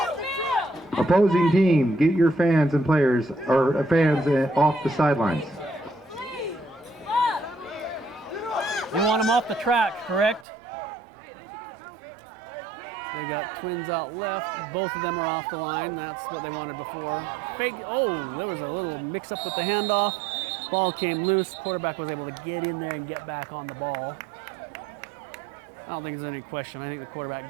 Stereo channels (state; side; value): drops out; left; at 10.5 s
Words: Opposing team, get your fans and players, or fans off the sidelines. You want them off the track, correct? They got twins out left. Both of them are off the line. That's what they wanted before. Fake. Oh, there was a little mix-up with the handoff. Ball came loose. Quarterback was able to get in there and get back on the ball. I don't think there's any question. I think the